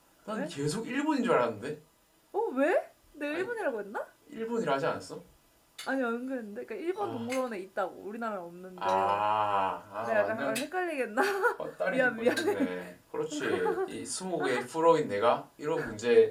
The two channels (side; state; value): both; identical; correlation 1.00